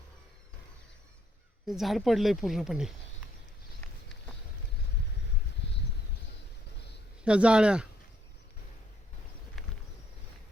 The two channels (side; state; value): both; normal; correlation 0.72